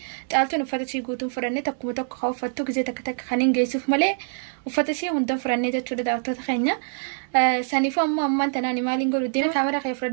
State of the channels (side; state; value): left; silent; 62 dB below the other